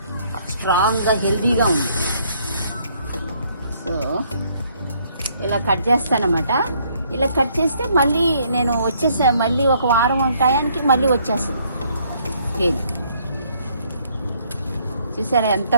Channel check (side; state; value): both; inverted; correlation -0.67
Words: స్ట్రాంగ్గా, హెల్దీగా ఉంది. సో ఇలా కట్ చేస్తానమాట. ఇలా కట్ చేస్తే మళ్ళీ నేను మళ్ళీ ఒక వారం టయానికి మళ్ళీ వచ్చేస్తుంది కేల్. చూసారా ఎంత